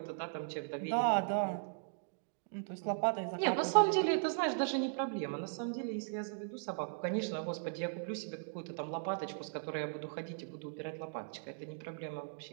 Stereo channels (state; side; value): silent; left; digital silence